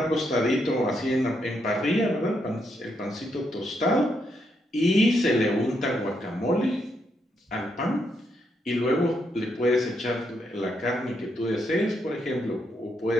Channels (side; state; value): both; normal; correlation 0.79